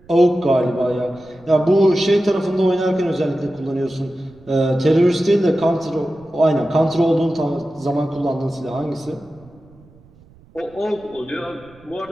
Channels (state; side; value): noise; right; rumble, 27 dB below the sound